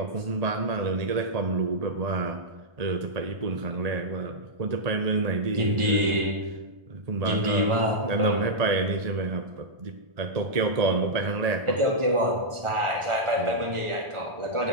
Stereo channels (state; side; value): late; left; 1.4 ms